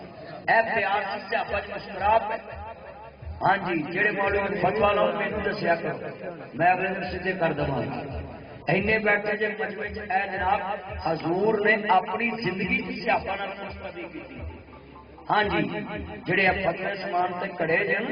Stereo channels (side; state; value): both; identical; correlation 1.00